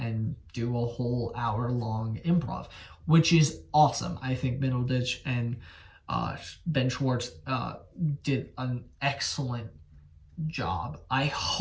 do a whole hour-long improv, which is awesome. I think Middleditch and Ben Schwartz did an excellent job. I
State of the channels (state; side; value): identical; both; correlation 1.00